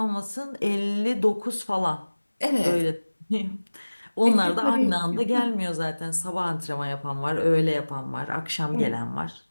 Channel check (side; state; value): both; inverted; correlation -1.00